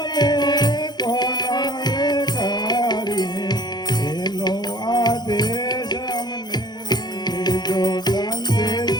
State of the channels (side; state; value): right; late; 0.20 ms